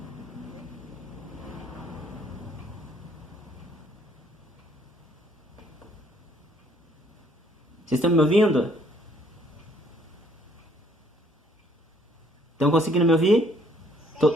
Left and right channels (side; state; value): both; normal; correlation 0.63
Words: Vocês estão me ouvindo? Estão conseguindo me ouvir?